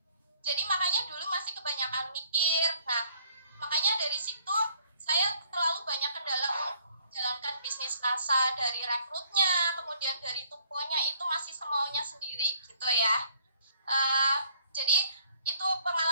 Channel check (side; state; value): both; inverted; correlation -0.63